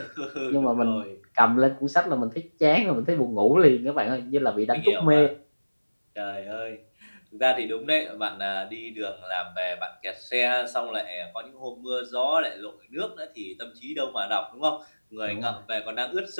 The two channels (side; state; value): both; inverted; correlation -1.00